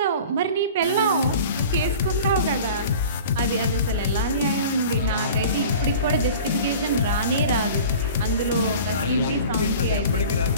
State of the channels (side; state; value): both; inverted; correlation -0.41